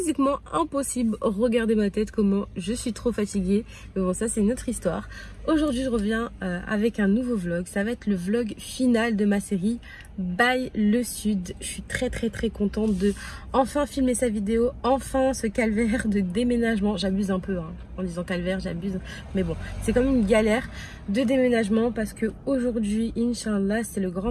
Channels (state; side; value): identical; both; correlation 1.00